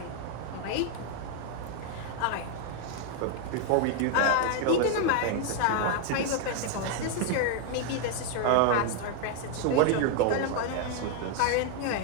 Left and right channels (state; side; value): different; both; correlation 0.00